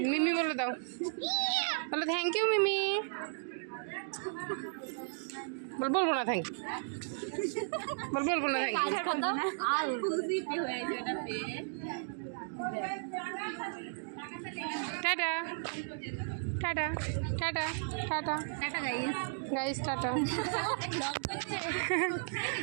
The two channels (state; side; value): silent; left; digital silence